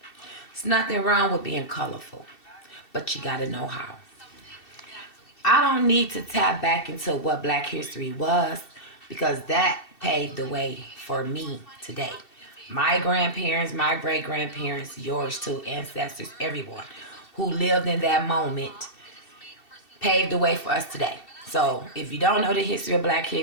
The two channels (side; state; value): right; late; 2.7 ms